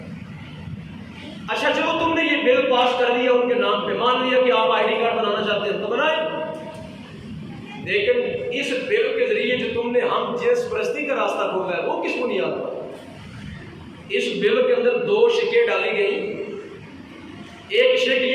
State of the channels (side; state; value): both; identical; correlation 1.00